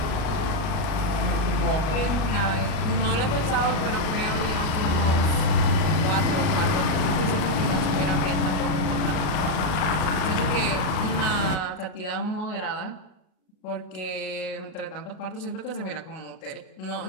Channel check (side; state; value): right; late; 38 ms